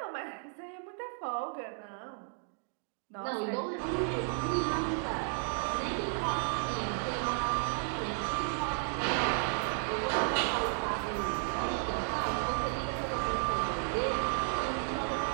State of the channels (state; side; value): silent; left; 55 dB below the other